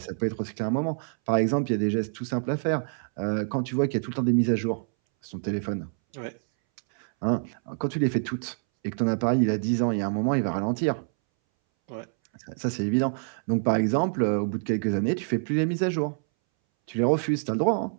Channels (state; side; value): silent; left; 60 dB below the other